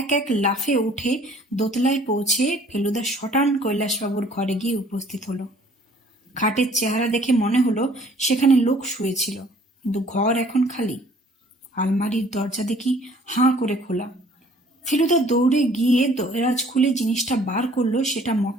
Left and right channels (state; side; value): normal; both; correlation 0.56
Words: এক লাফে উঠে দোতলায় পৌঁছে ফেলুদা শটান কৈলাসবাবুর ঘরে গিয়ে উপস্থিত হলো। খাটের চেহারা দেখে মনে হলো সেখানে লোক শুয়েছিল, কিন্তু ঘর এখন খালি। আলমারির দরজা দেখি হাঁ করে খোলা। ফেলুদা দৌড়ে গিয়ে দরাজ খুলে জিনিসটা বার করলো। সেটা